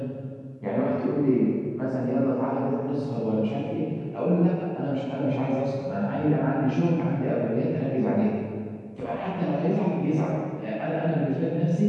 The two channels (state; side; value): identical; both; correlation 1.00